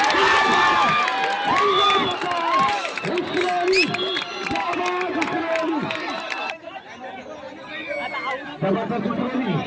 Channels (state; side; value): identical; both; correlation 1.00